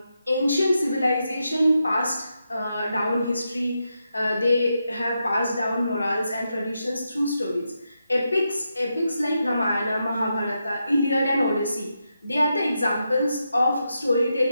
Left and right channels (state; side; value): inverted; both; correlation -0.85